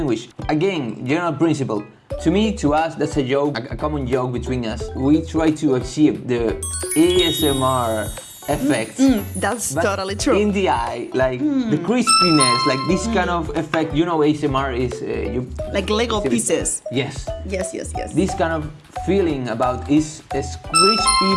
Again, general principle. To me, to us, that's a joke, a common joke between us. We try to achieve the ASMR effect. That's but totally true. In the eye, like the crispiness, like this kind of effect. ASMR is like Lego pieces. Yes. Yes. This kind of feeling about is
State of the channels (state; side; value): identical; both; correlation 1.00